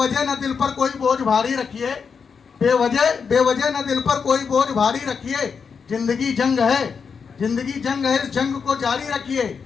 न दिल पर कोई बोझ भारी रखिए, बेवजह न दिल पर कोई बोझ भारी रखिए। जिंदगी जंग है, जिंदगी जंग है, इस जंग को जारी रखिए।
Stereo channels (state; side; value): quieter; right; 5.9 dB